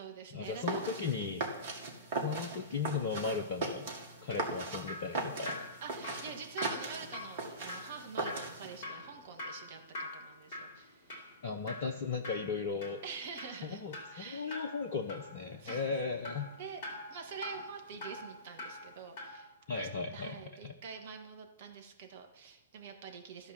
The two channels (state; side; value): inverted; both; correlation -0.30